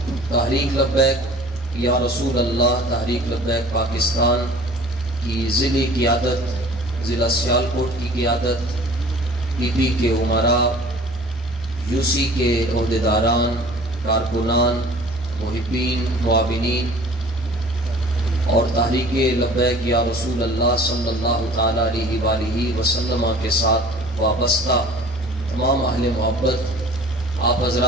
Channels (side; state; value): both; normal; correlation 0.46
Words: تحریک لبیک یا رسول اللہ تحریک لبیک پاکستان کی ضلعی قیادت، ضلع سیالکوٹ کی قیادت، پی پی کے امراء، یو سی کے عہدیداران، کارکنان، محبین، معاونین اور تحریک لبیک یا رسول اللہ صلی اللہ تعالیٰ علیہ وآلہ وسلم کے ساتھ وابستہ تمام اہل محبت، آپ